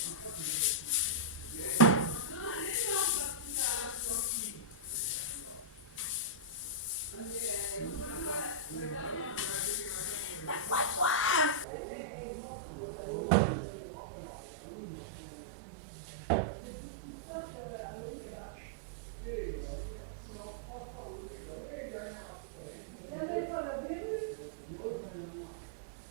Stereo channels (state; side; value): drops out; left; at 11.7 s